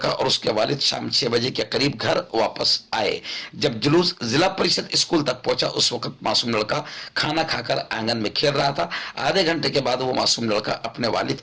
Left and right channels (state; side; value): identical; both; correlation 1.00